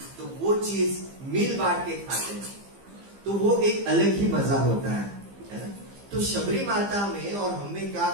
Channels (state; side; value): late; left; 15 ms